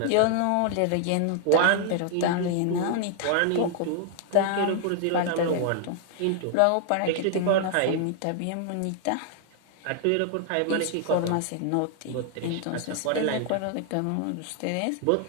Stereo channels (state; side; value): different; both; correlation 0.00